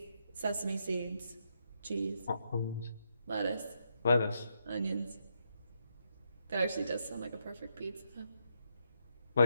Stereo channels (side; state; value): both; inverted; correlation -0.80